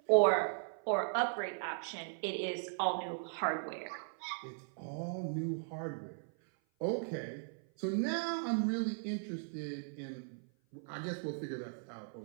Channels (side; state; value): left; silent; 53 dB below the other